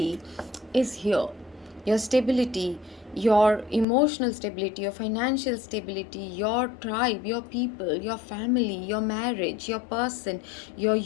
is here. Your stability, your emotional stability, your financial stability, your tribe, your people, your family, your marriage, your person, your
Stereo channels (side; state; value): right; drops out; at 3.9 s